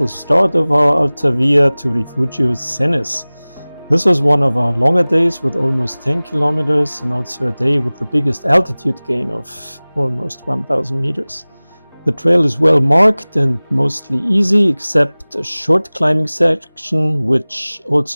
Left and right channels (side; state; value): both; inverted; correlation -1.00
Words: start of our Alta via, to Refugio Cenis. This was one of our longer days with almost 10 kilometers and also a day with the biggest altitude gain of almost 1,000 meters. The trail is well marked and mostly easy, except a short climbing section, which